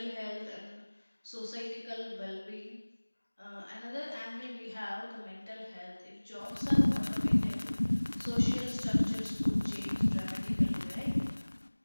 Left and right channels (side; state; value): both; inverted; correlation -1.00